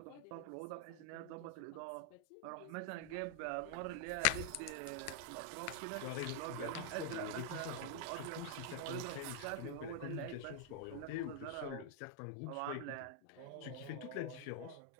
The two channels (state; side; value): different; both; correlation 0.00